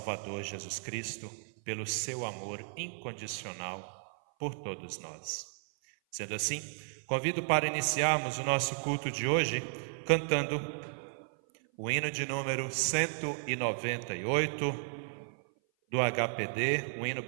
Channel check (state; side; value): silent; left; 55 dB below the other